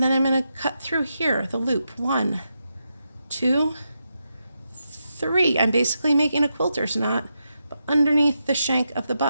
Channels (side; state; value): both; inverted; correlation -0.86